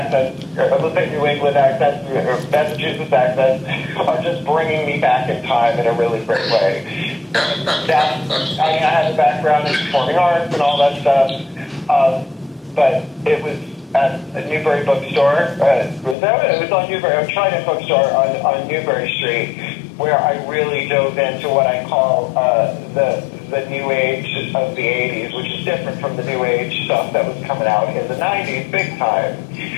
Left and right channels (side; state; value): right; drops out; at 16.2 s